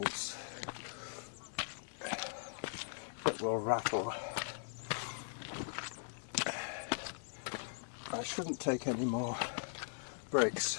that will rattle. I shouldn't take any more breaks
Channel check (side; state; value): right; silent; digital silence